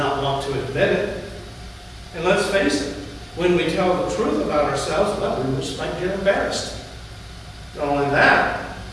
want to admit it. And let's face it, when we tell the truth about ourselves, well, we just might get embarrassed. Not only that,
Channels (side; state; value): both; identical; correlation 1.00